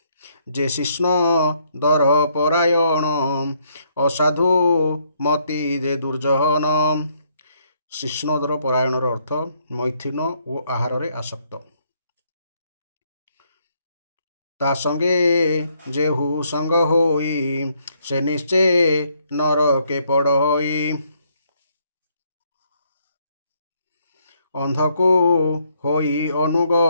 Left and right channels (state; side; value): inverted; both; correlation -0.70